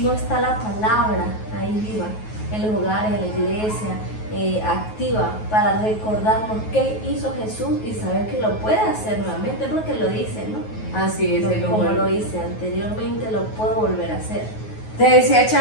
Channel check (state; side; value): late; right; 9.3 ms